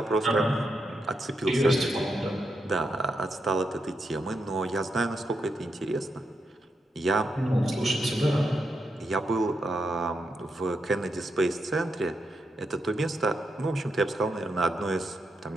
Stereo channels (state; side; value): normal; both; correlation 0.83